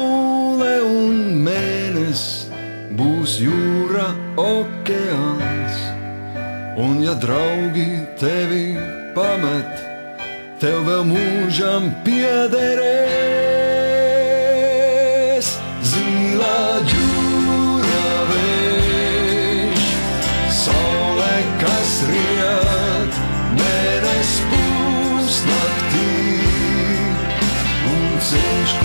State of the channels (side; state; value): both; inverted; correlation -1.00